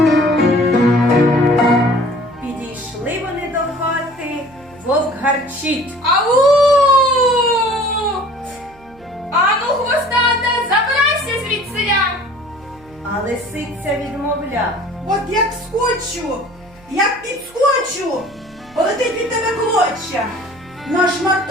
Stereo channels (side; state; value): right; noise; hum, 26 dB below the sound